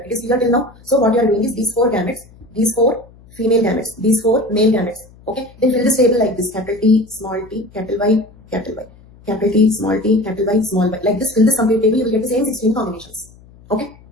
it is clear till now. So what you are doing is these four gametes, these four female gametes, these four male gametes. Okay, then fill this table like this: capital T, small t, capital Y, capital Y, capital T, small t, capital Y, small y. Like this, fill this complete table, you will get the same 16 combinations. Okay.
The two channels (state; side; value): noise; left; hum, 25 dB below the sound